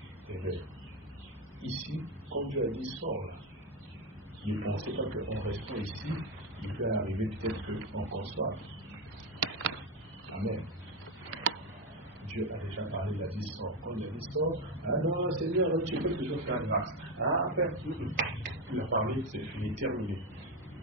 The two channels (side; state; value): both; normal; correlation 0.10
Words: et bien, ici, comme Dieu a dit, sors là. Ne pensez pas qu'en restant ici, il peut arriver peut-être qu'on conçoive. Amen. Dieu a déjà parlé, il a dit sors. Quand il a dit sors, ah non, Seigneur, tu peux toujours faire grâce. Ah, après, il a parlé, c'est fini, terminé.